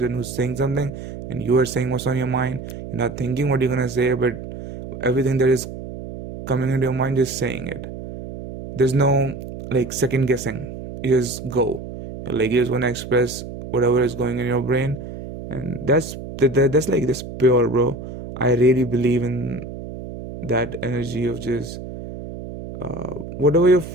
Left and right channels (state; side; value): noise; right; hum, 10 dB below the sound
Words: who's saying something and you are saying what's on your mind. You're not thinking what you're gonna say, but everything that is coming into your mind, just saying it. There's no like second guessing. You just go. Like you just wanna express whatever is going in your brain, and that's like this pure, bro. I really believe in that energy of just whatever your